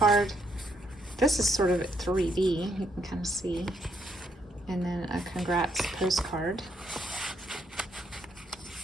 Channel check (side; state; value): both; normal; correlation 0.74